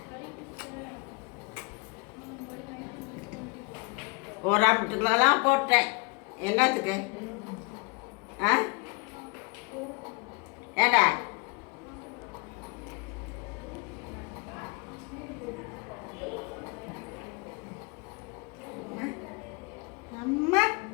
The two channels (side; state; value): right; quieter; 29.8 dB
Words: ஒரு ஆம்பட்டுக்கெல்லாம் போட்டேன். என்னத்துக்கு? ஆ ஏண்டா அம்மா